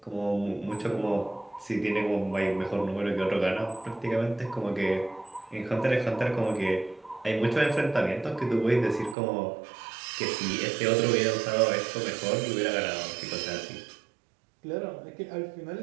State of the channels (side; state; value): left; drops out; at 9.2 s